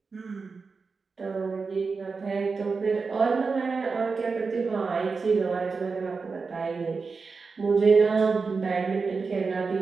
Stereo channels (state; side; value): quieter; left; 4.7 dB